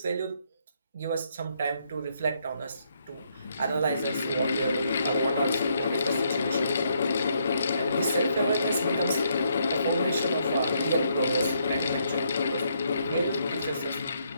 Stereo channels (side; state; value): both; inverted; correlation -0.73